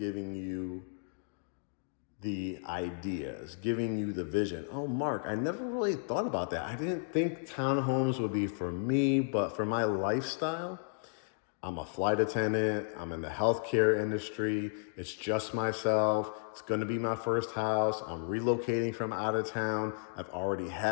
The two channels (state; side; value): silent; right; digital silence